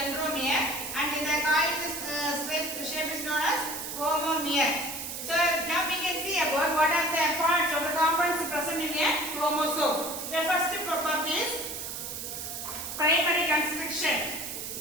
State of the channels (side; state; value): right; noise; hiss, 6 dB below the sound